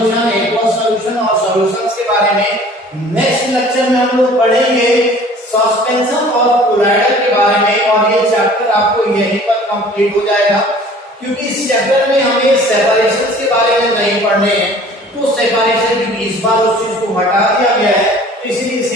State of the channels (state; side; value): normal; both; correlation 0.49